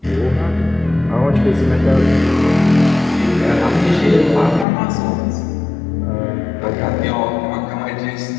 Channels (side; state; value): right; drops out; at 4.7 s